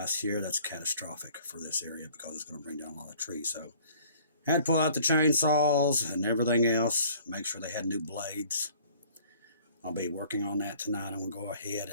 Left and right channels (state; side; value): inverted; both; correlation -0.53